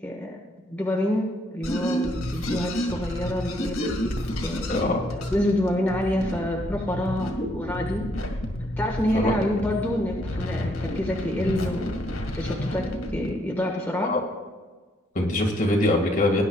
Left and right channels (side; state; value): both; normal; correlation 0.71